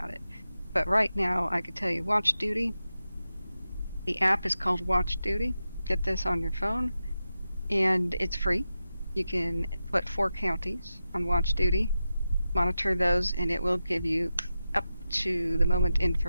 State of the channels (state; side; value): inverted; both; correlation -0.91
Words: it. But right now, I could tell you Watch Duty. The app is called Watch Duty. Get this on your phone, and it's free. You can put 4 counties on Watch Duty, monitor those, and it will give you up to the moment